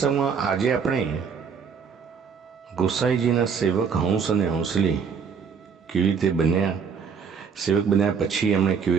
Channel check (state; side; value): quieter; left; 6.3 dB